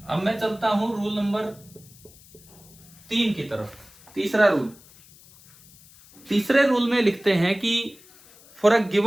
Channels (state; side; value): noise; left; hiss, 24 dB below the sound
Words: अब मैं चलता हूं रूल नंबर 3 की तरफ। तीसरा रूल, तीसरे रूल में लिखते हैं कि for a